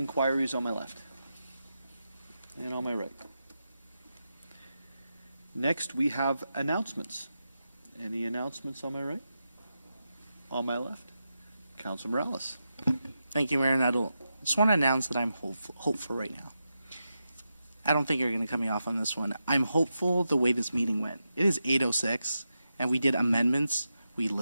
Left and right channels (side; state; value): both; inverted; correlation -0.88